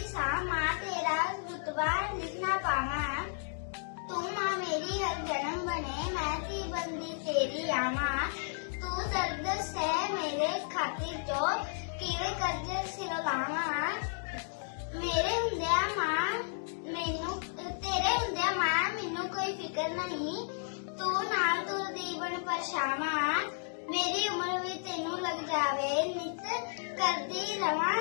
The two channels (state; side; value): silent; right; digital silence